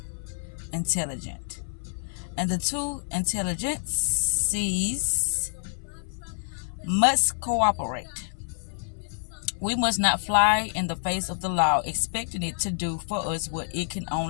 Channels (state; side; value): silent; right; 60 dB below the other